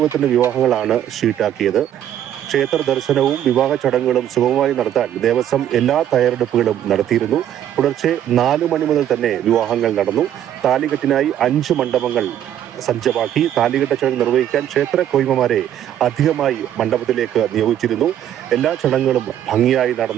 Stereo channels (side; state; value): left; quieter; 10.9 dB